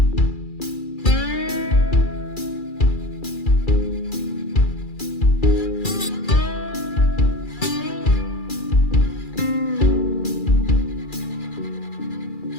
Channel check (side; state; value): right; late; 2.4 ms